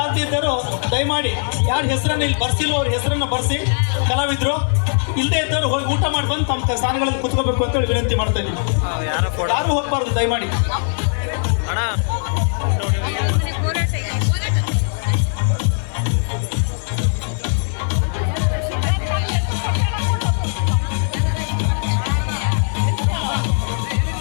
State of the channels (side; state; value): right; silent; digital silence